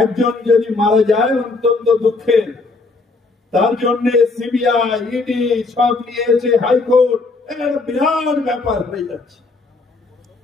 যদি মারা যায় অত্যন্ত দুঃখের, তার জন্য সিবিআই ইডি সব নিয়েছে, হাইকোর্ট, বিরাট ব্যাপার হয়ে যাচ্ছে।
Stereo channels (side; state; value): right; quieter; 3.7 dB